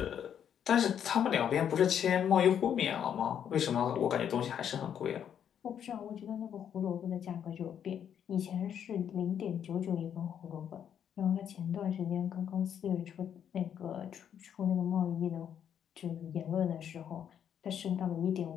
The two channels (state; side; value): quieter; right; 8.9 dB